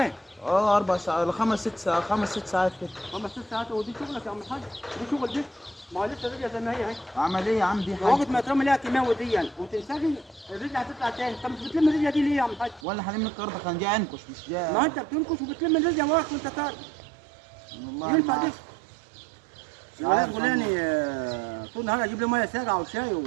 4 ساعات 5 6 ساعات 5 6 ساعات كده. 5 6 ساعات. ودي شغلك يا عم الحاج؟ دي شغل دي؟ ما هو لسه الرجله زي ما هي اهي. اعمل ايه يا عم؟ دي حاجه وقت ما ترمي لها كيماوي دي يعني وتنسجي الرجله هتطلع تاني. انت مش بتلم الرجله دي ليه يا عم الحاج؟ ولا هلم الارض كان جاي انكش مش جاي. ما انت بتنكش وبتلم الرجله وراك وانت طالع. والله ينفع ما دي؟ الولاد فلاني طول النهار اجيب له ميه ساقعه وشاي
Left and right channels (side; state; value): left; drops out; at 12.9 s